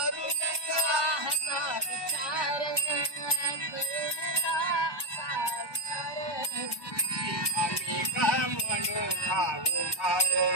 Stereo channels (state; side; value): late; right; 1.1 ms